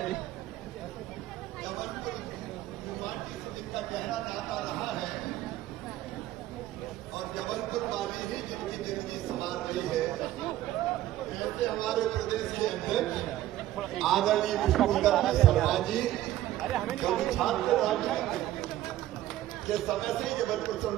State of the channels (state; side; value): quieter; left; 14.1 dB